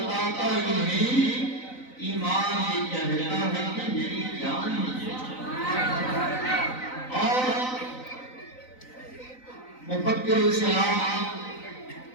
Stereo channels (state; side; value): late; right; 3.9 ms